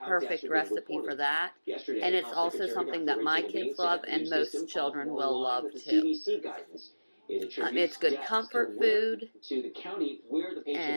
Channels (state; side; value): inverted; both; correlation -1.00